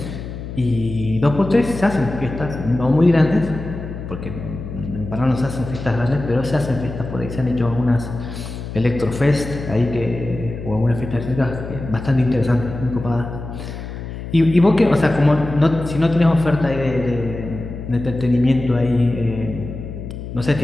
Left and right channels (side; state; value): left; noise; hum, 9 dB below the sound